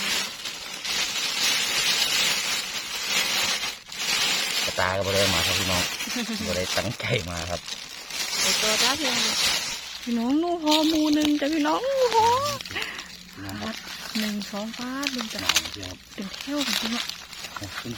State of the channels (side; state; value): both; identical; correlation 1.00